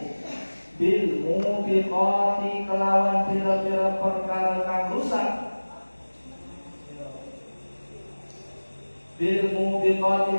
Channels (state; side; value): inverted; both; correlation -1.00